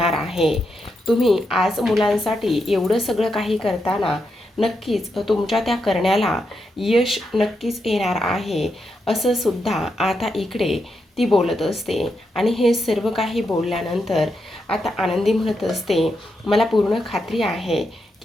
आहे. तुम्ही आज मुलांसाठी एवढं सगळं काही करताना नक्कीच तुमच्या त्या करण्याला यश नक्कीच येणार आहे, असं सुद्धा आता इकडे ती बोलत असते. आणि हे सर्व काही बोलल्यानंतर आता आनंदी म्हणत असते, मला पूर्ण खात्री आहे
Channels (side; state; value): both; normal; correlation 0.84